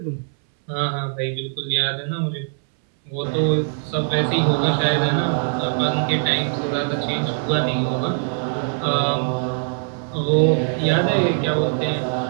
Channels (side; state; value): left; silent; 64 dB below the other